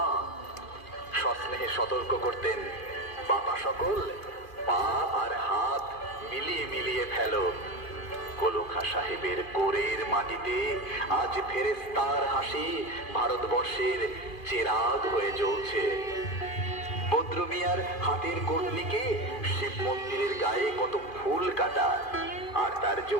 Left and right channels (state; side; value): late; right; 2.4 ms